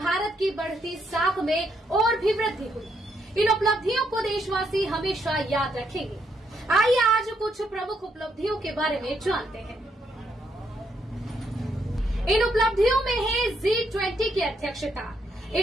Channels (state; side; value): normal; both; correlation 0.76